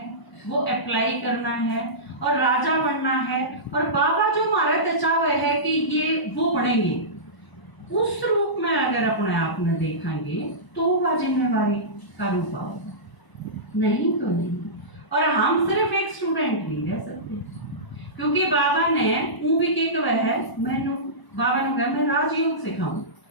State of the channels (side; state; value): right; late; 1.0 ms